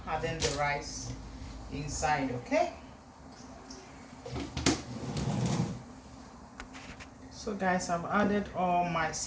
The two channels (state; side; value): identical; both; correlation 1.00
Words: adding the rice inside. Okay? So guys, I've added all my